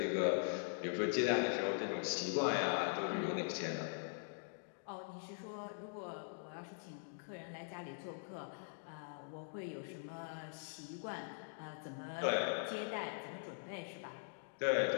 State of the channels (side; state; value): right; silent; digital silence